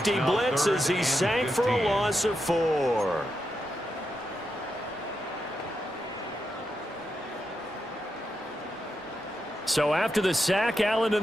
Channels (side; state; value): both; normal; correlation 0.86